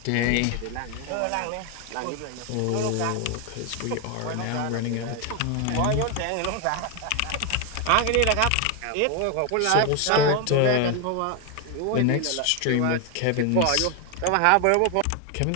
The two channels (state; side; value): different; both; correlation 0.01